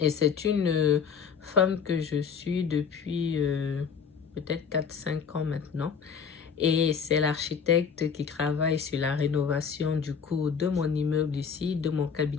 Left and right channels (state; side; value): quieter; right; 6.6 dB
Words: c'est une femme que je suis depuis peut-être 4 5 ans maintenant. Et c'est l'architecte qui travaille sur la rénovation du coup de mon immeuble ici, de mon